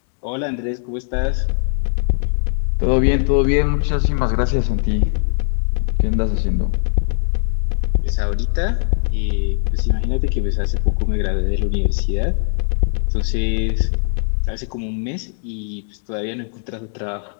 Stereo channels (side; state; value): right; silent; 65 dB below the other